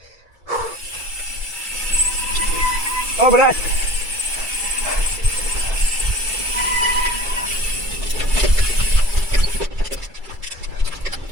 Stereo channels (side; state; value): left; late; 2.3 ms